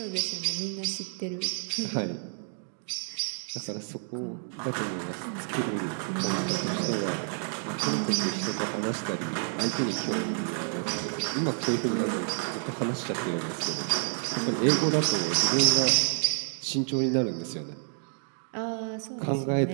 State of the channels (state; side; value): silent; left; 58 dB below the other